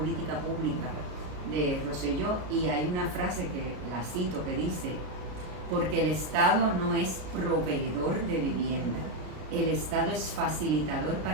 pública de Rosselló y hay una frase que la cito que dice: porque el Estado no es proveedor de vivienda, el Estado es facilitador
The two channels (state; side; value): late; left; 33 ms